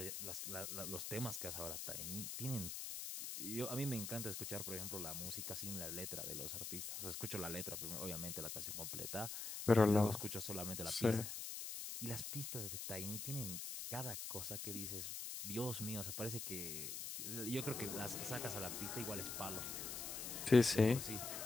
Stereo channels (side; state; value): left; noise; hiss, 5 dB below the sound